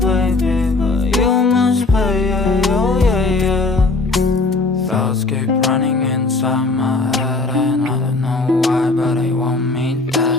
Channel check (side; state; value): right; quieter; 3.5 dB